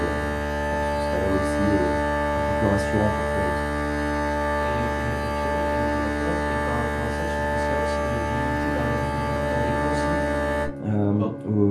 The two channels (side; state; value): both; identical; correlation 1.00